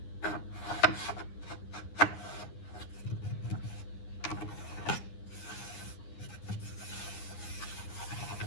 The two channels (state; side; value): late; right; 9.7 ms